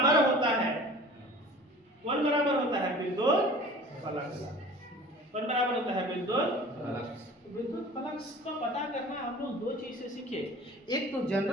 होता है। कौन बराबर होता है? विद्युत फ्लक्स। कौन बराबर होता है? विद्युत फ्लक्स। विद्युत फ्लक्स का पता करना हम लोग दो चीज से सीखे। एक तो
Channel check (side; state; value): both; normal; correlation 0.43